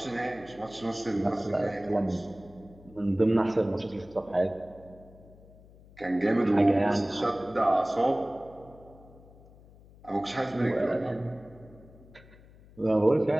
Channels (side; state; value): left; noise; hum, 23 dB below the sound